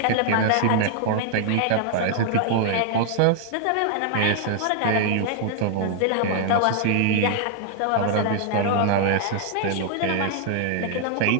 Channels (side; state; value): both; different; correlation -0.01